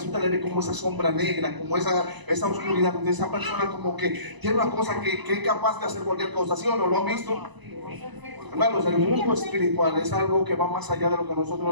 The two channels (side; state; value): left; late; 1.0 ms